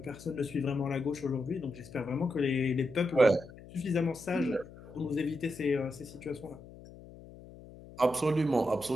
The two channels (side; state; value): left; noise; hum, 18 dB below the sound